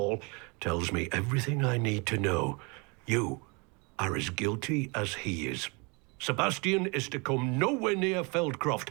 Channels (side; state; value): left; quieter; 30.5 dB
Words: tells me everything I need to know. You are as guilty as he is. Sebastian is to come nowhere near Feldcroft,